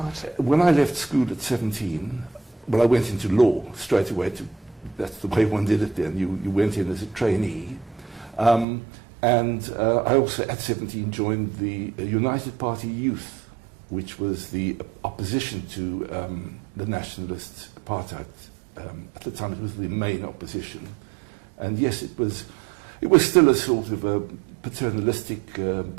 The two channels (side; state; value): left; drops out; at 8.7 s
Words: When I left school at 17, well, I went into law straight away. That's the way one did it then. You went in as a trainee. And I also, at 17, joined the United Party Youth, which was the opposition to the nationalist apartheid. At the time, it was the main opposition. And yes, it was still a sort of a paternalistic,